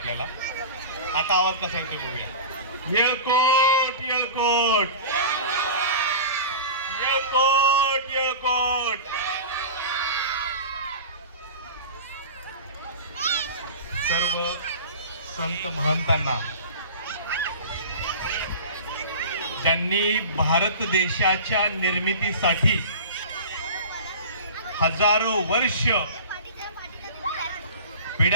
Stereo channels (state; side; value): inverted; both; correlation -0.34